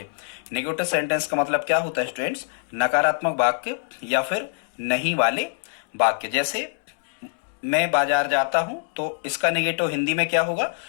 नेगेटिव सेंटेंस का मतलब क्या होता है स्टूडेंट्स? नकारात्मक वाक्य या फिर नहीं वाले वाक्य। जैसे मैं बाजार जाता हूं तो इसका नेगेटिव हिंदी में क्या होगा?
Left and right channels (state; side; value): silent; right; digital silence